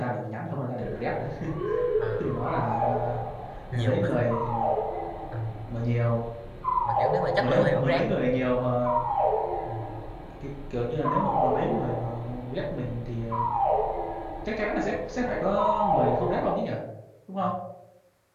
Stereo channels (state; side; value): identical; both; correlation 1.00